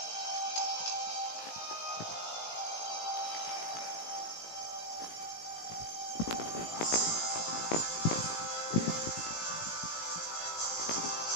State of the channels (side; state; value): right; late; 18 ms